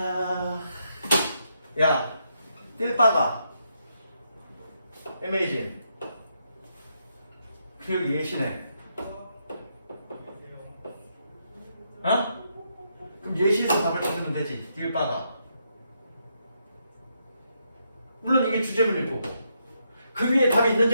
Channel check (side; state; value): both; inverted; correlation -0.79